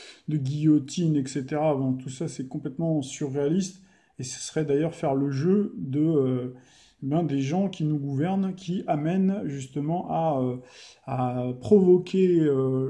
guillotine, etc. Bon, tout ça c'est complètement surréaliste et ce serait d'ailleurs faire le jeu des gens qui nous gouvernent, qui amènent justement à provoquer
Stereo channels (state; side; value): identical; both; correlation 1.00